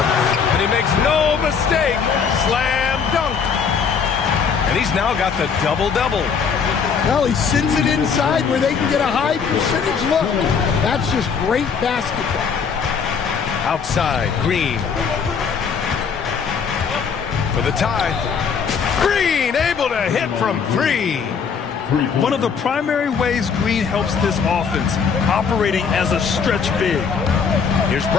And he makes no mistake. Slam dunk. And he's now got the double-double. Well, he sends it inside where they can get a high percentage look. That's just great basketball. Outside, Green. For the tie. Green able to hit from 3. One of the primary ways Green helps this offense, operating as a stretch big. Here's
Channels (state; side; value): quieter; right; 6.2 dB